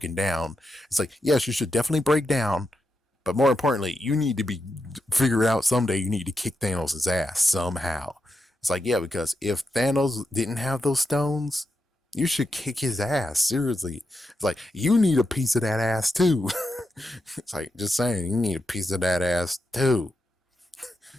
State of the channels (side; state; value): both; normal; correlation 0.86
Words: down. It's like, yes, you should definitely break down. But more importantly, you need to be figure out someday you need to kick Thanos' ass somehow. It's like, yeah, because if Thanos didn't have those stones, you should kick his ass. Seriously. It's like, you need a piece of that ass too. It's like, just saying, you need a piece of that ass too.